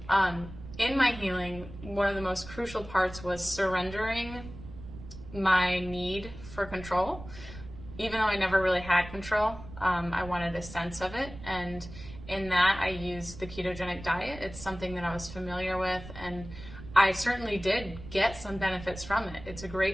In my healing, one of the most crucial parts was surrendering my need for control. Even though I never really had control, I wanted a sense of it. And in that, I used the ketogenic diet. It's something that I was familiar with, and I certainly did get some benefits from it. It's a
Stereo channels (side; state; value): right; noise; rumble, 14 dB below the sound